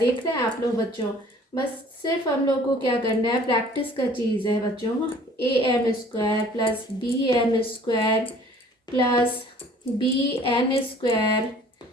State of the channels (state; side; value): normal; both; correlation 0.53